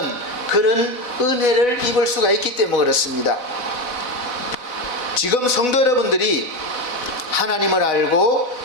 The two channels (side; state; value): right; late; 4.0 ms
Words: 그런 은혜를 입을 수가 있기 때문에 그렇습니다. 지금 성도 여러분들이 하나님을 알고